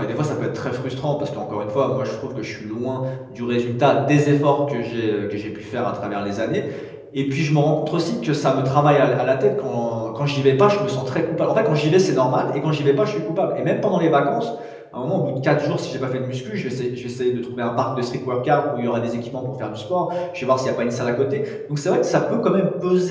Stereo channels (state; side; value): identical; both; correlation 1.00